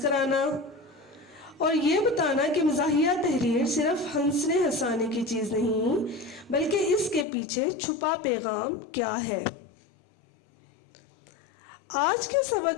کرانا، اور یہ بتانا کہ مزاحیہ تحریر صرف ہنسنے ہنسانے کی چیز نہیں بلکہ اس کے پیچھے چھپا پیغام کیا ہے۔ آج کے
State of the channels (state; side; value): drops out; right; at 7.2 s